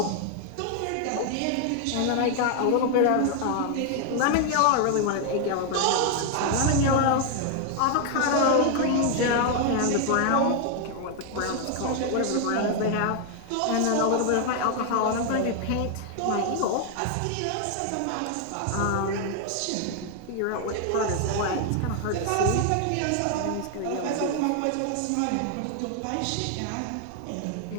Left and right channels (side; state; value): both; different; correlation 0.00